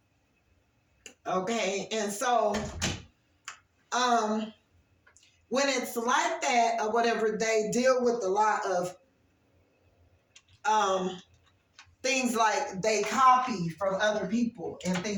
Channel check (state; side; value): identical; both; correlation 1.00